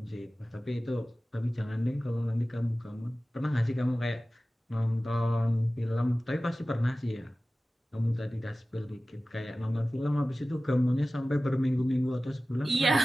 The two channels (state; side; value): normal; both; correlation 0.96